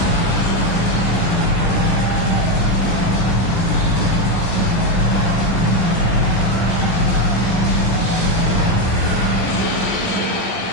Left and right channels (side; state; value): right; late; 17 ms